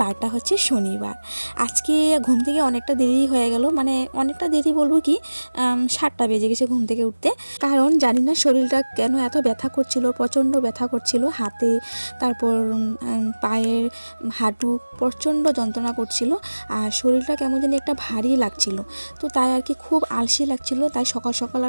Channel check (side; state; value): both; inverted; correlation -1.00